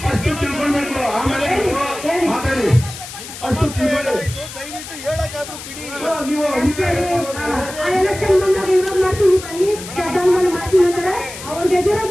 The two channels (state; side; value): noise; left; hiss, 12 dB below the sound